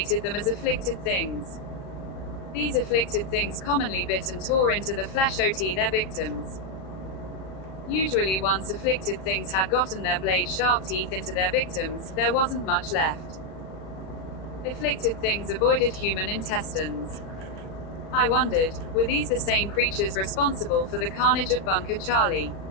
them as afflicted things. These afflicted things commonly bit and tore into the flesh of their victims. Usually once afflicted things had gotten their blade-sharp teeth into their victims, there wasn't much left. Afflicted things avoided human intestines. I wondered, were these the same creatures responsible for the carnage of Bunker Charlie?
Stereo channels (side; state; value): right; late; 37 ms